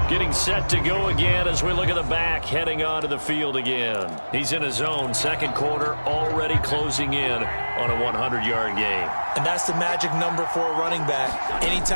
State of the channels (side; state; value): both; inverted; correlation -1.00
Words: Getting set to go again as we look at the back heading onto the field again. He's in his own 2nd quarter, already closing in on a 100-yard game. And that's the magic number for a running back.